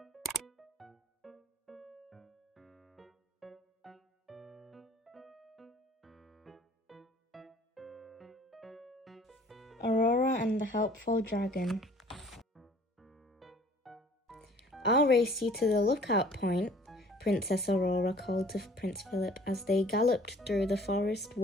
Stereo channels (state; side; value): normal; both; correlation 0.52